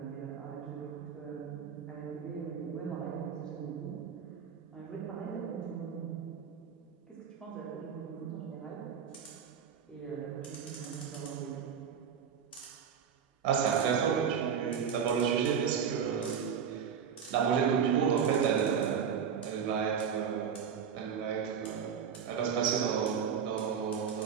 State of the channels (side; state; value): left; quieter; 7.3 dB